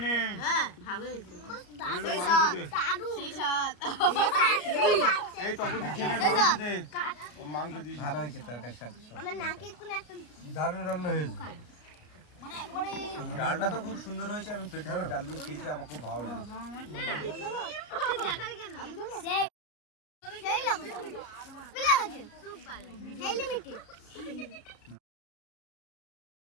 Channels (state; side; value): late; right; 33 ms